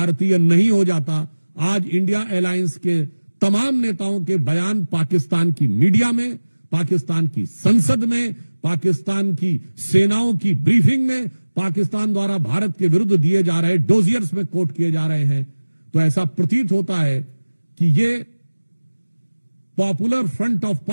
नहीं हो जाता। आज इंडिया अलायंस के तमाम नेताओं के बयान पाकिस्तान की मीडिया में, पाकिस्तान की संसद में, पाकिस्तान की सेनाओं की ब्रीफिंग में, पाकिस्तान द्वारा भारत के विरुद्ध दिए जा रहे डोजियर्स में कोट किए जा रहे हैं। तो ऐसा प्रतीत होता है कि ये पॉपुलर फ्रंट ऑफ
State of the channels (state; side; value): inverted; both; correlation -1.00